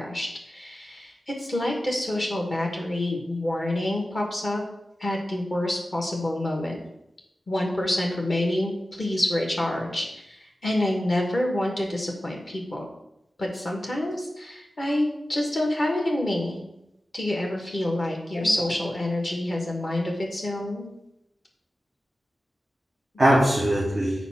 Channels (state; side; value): normal; both; correlation 0.94